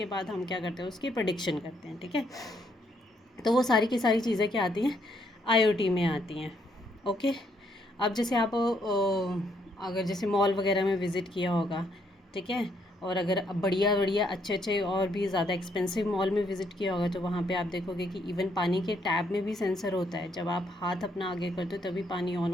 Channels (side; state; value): both; normal; correlation 0.72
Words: बाद हम क्या करते हैं, उसकी प्रेडिक्शन करते हैं। ठीक है, तो वो सारी की सारी चीज़ें क्या आती हैं, आईओटी में आती हैं। ओके, अब जैसे आप अगर जैसे मॉल वगैरह में विज़िट किया होगा, ठीक है, और अगर बढ़िया बढ़िया अच्छे अच्छे और भी ज़्यादा एक्सपेंसिव मॉल में विज़िट किया होगा, तो वहाँ पे आप देखोगे कि इवन पानी के टैप में भी सेंसर होता है। जब आप हाथ अपना आगे करते हो तभी पानी ऑन